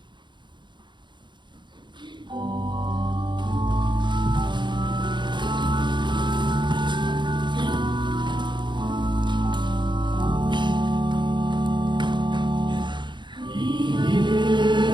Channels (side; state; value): left; late; 0.22 ms